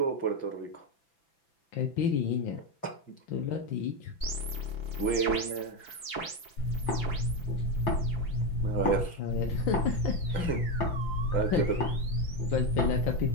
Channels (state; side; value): late; right; 5.9 ms